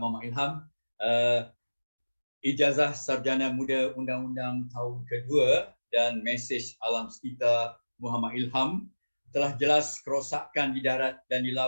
Muhammad Ilham. Ijazah Sarjana Muda Undang-Undang tahun kedua dan mesej alam sekitar Muhammad Ilham telah jelas kerosakan di darat dan di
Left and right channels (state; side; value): inverted; both; correlation -1.00